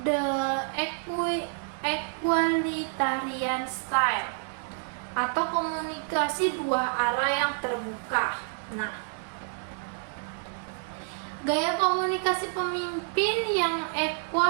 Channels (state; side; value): silent; left; 56 dB below the other